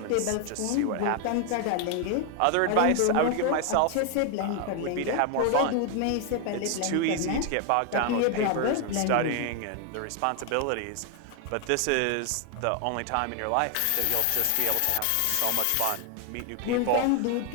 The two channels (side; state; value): both; different; correlation 0.00